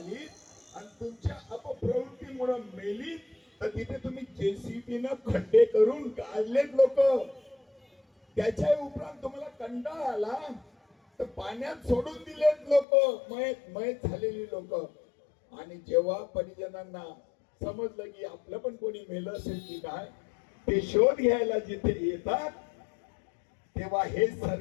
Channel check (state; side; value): drops out; right; at 12.9 s